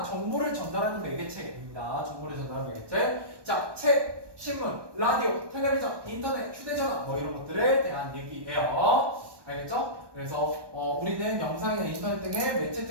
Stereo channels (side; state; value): left; late; 1.2 ms